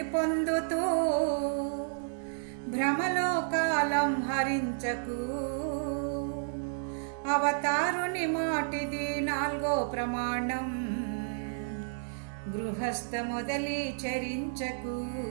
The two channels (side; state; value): left; silent; digital silence